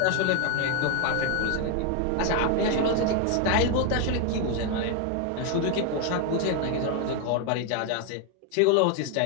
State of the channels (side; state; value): both; different; correlation 0.01